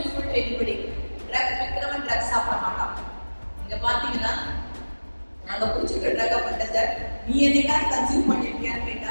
to anybody. Drugs விக்கிறவன் ட்ரக்ஸ் சாப்பிட மாட்டான். இங்க பாத்தீங்கன்னா நாங்க குடிச்சிருக்க ட்ரக் அஃபெண்டர்ஸை நீ என்னைக்காவது கன்சியூம் பண்ணிருக்கியான்னு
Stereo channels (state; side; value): inverted; both; correlation -1.00